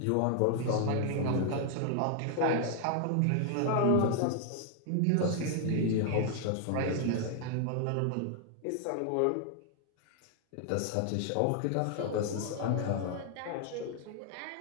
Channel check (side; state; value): both; different; correlation 0.00